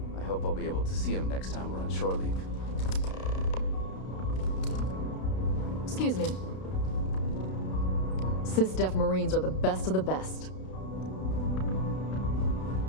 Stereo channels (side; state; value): right; late; 32 ms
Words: I hope I'll be able to see him next time we're on shore leave. Excuse me. Sys-Def Marines are the best of the best.